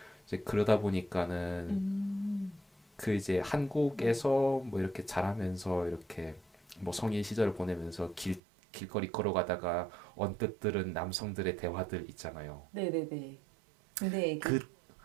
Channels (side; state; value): left; drops out; at 8.4 s